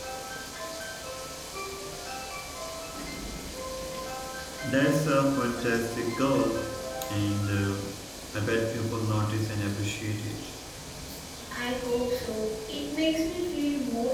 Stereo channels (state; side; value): identical; both; correlation 1.00